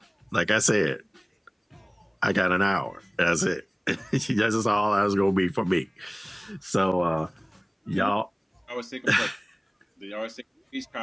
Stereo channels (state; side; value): identical; both; correlation 1.00